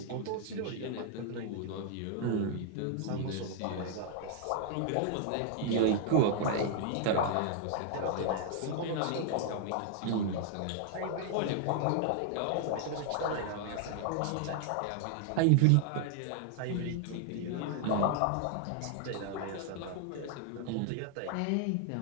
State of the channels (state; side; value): different; both; correlation 0.00